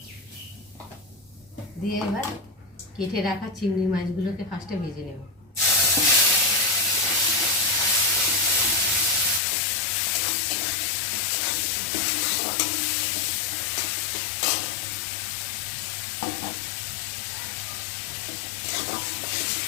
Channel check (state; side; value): drops out; right; at 9.4 s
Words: দিয়ে এবার কেটে রাখা চিংড়ি মাছগুলোকে ফার্স্টে ভেজে নেব।